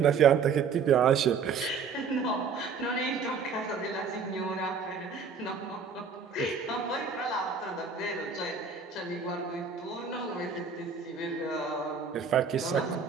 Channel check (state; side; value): quieter; left; 5.6 dB